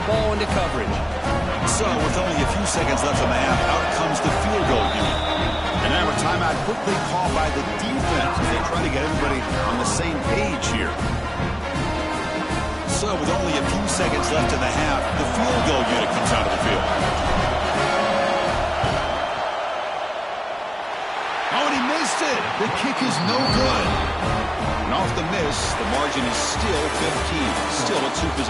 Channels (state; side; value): identical; both; correlation 1.00